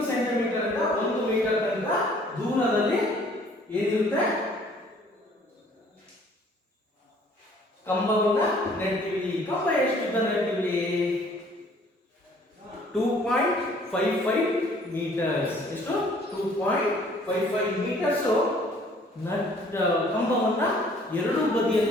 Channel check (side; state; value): both; normal; correlation 0.57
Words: ಸೆಂಟಿಮೀಟರ್ ಇಂದ 1 ಮೀಟರ್ ತನಕ ದೂರದಲ್ಲಿ ಏನಿರುತ್ತೆ ಕಂಬವನ್ನ ನೆಡ್ತೀವಿ. ಕಂಬ ಎಷ್ಟು ಉದ್ದ ನೆಡ್ತೀವಿ? 2.55 ಮೀಟರ್ಸ್. ಎಷ್ಟು? 2.55 ಮೀಟರ್ಸ್ ಕಂಬವನ್ನ ಎರಡು